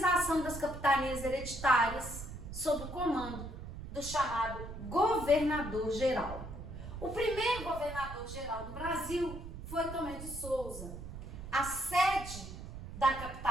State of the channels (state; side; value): noise; right; rumble, 10 dB below the sound